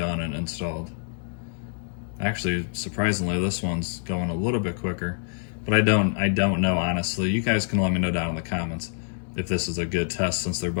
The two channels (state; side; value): silent; right; digital silence